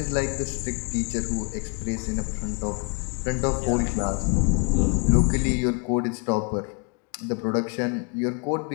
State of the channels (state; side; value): quieter; right; 33.3 dB